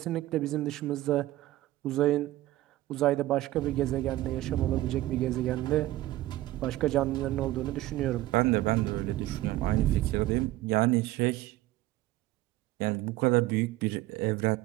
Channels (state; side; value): quieter; left; 16.2 dB